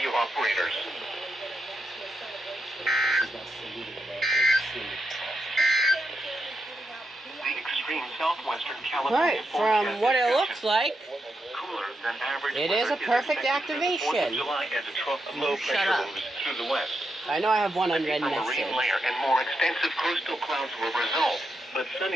operators. The extreme southwestern California from what it looks like, than average it is a perfect activation. July as a trough of low pressure moves through the west. I know I have one unread A message. marine layer and more extensive coastal clouds will result, but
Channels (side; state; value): both; normal; correlation 0.84